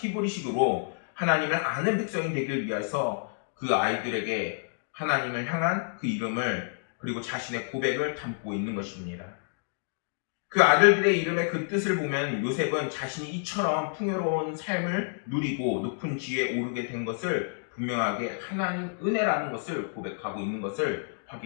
하나님을 아는 백성이 되길 위해서 그 아이들에게 하나님을 향한 그 이름을 그리고 자신의 고백을 담고 있는 것입니다. 그 아들들의 이름의 그 뜻을 보면 요셉은 자신이 이처럼 풍요로운 삶을 누리고 높은 지위에 오르게 된 것을 분명하게 하나님 은혜라는 것을 고백하고 있는 것을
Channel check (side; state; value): right; silent; digital silence